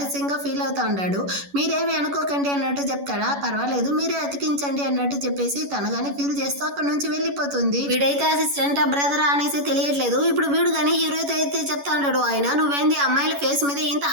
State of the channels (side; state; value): left; late; 11 ms